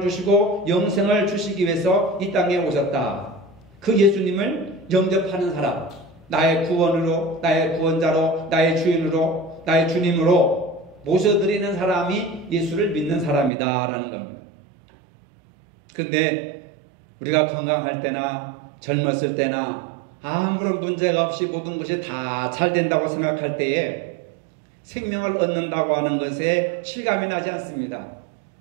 주시고 영생을 주시기 위해서 이 땅에 오셨다. 그 예수님을 영접하는 사람, 나의 구원으로, 나의 구원자로, 나의 주인으로, 나의 주님으로 모셔드리는 사람이 예수를 믿는 사람이다 라는 겁니다. 그런데 우리가 건강할 때나 젊었을 때나 아무런 문제가 없이 모든 것이 다 잘 된다고 생각할 때에 생명을 얻는다고 하는 것에 실감이 나지 않습니다.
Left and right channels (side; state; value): left; drops out; at 13.5 s